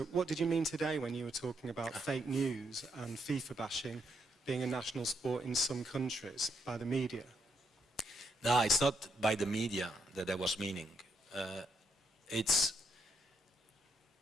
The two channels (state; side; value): normal; both; correlation 0.77